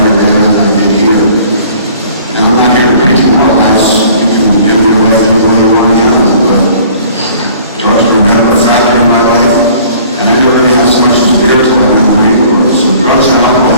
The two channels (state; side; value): inverted; both; correlation -0.52